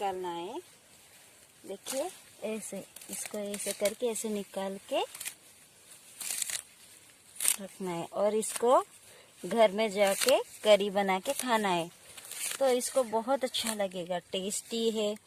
है। देखिए, ऐसे इसको ऐसे करके ऐसे निकाल के रखना है, और इसको घर में जाके करी बना के खाना है। तो इसको बहुत अच्छा लगेगा, टेस्टी है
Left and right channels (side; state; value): both; identical; correlation 1.00